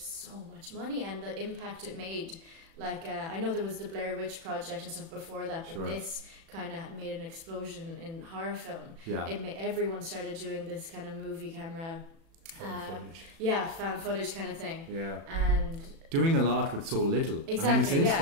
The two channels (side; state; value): left; late; 36 ms